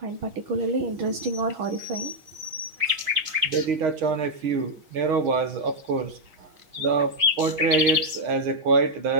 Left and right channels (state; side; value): late; left; 6.4 ms